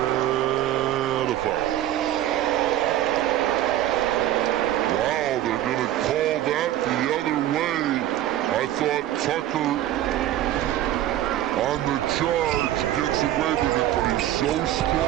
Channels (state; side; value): quieter; left; 13.0 dB